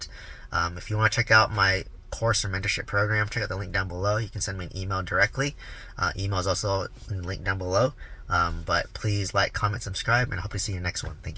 If you want to check out my course or mentorship program, check out the link down below. You can send me an email directly. Email is also in the link down below. But please like, comment, subscribe, and I hope to see you in the next one. Thank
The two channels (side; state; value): both; identical; correlation 1.00